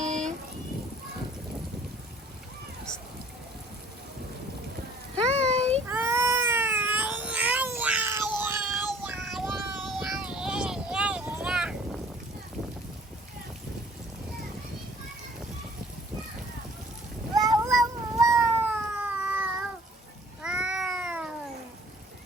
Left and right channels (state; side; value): normal; both; correlation 0.54